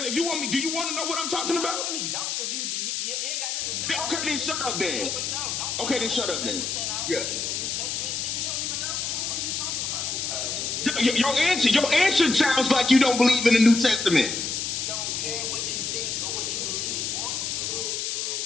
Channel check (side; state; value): left; noise; hiss, 2 dB below the sound